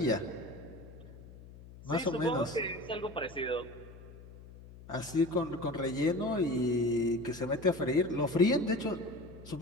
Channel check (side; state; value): left; noise; hum, 18 dB below the sound